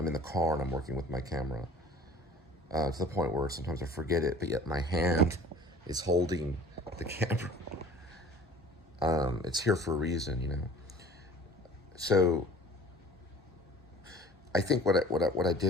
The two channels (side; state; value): both; normal; correlation 0.46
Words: in the car and I'm working with my camera. To the point where sometimes I forget it, but yet my hand is holding the camera. It's here for a reason, you know. So I think what I